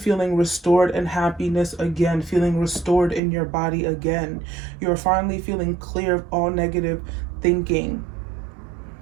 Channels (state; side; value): drops out; left; at 3.2 s